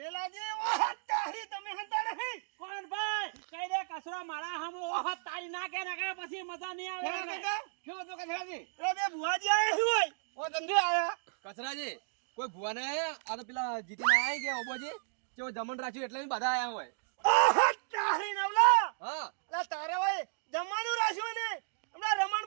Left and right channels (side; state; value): left; silent; digital silence